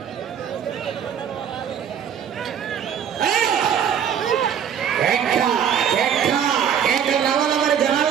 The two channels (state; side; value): quieter; left; 8.5 dB